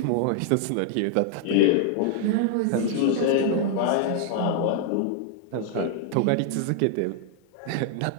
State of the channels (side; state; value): both; different; correlation 0.00